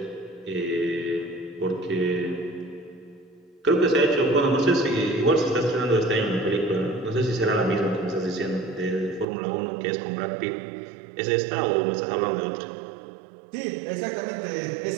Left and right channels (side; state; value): left; drops out; at 9.2 s